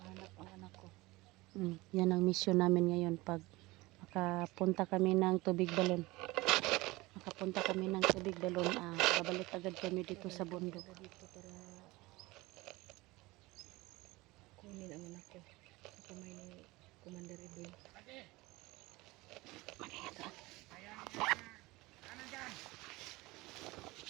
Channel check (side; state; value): left; quieter; 21.2 dB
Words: mahanap ang anak ko. Yan ang mission namin ngayon. Pag makapunta kami ng tubig balon, babalik agad kami dito sa bundok. Dito para kunin ang anak ko sa kamay ni Commander Edwin. Mag-ingat.